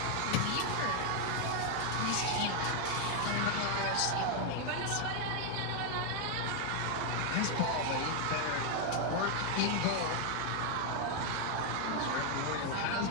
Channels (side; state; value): both; different; correlation 0.00